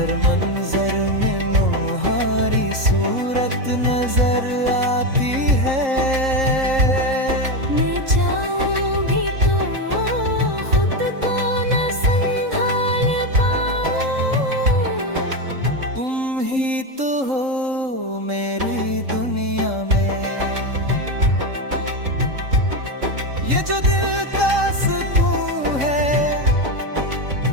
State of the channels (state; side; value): late; left; 3.8 ms